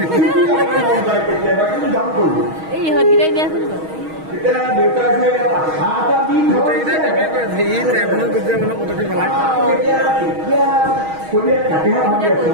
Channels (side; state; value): left; late; 6.3 ms